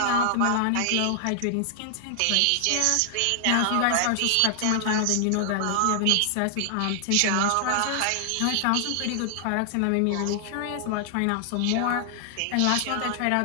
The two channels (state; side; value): different; both; correlation 0.00